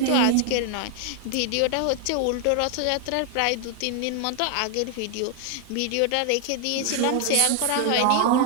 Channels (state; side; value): different; both; correlation 0.00